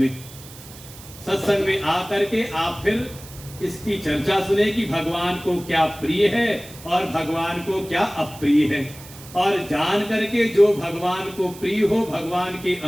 सत्संग में आकर के आप फिर इसकी चर्चा सुने कि भगवान को क्या प्रिय है और भगवान को क्या अप्रिय है, और जान करके जो भगवान को प्रिय हो, भगवान के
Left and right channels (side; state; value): right; noise; hiss, 18 dB below the sound